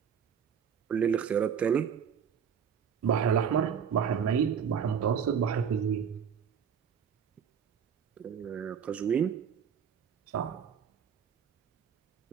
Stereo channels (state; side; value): quieter; left; 7.5 dB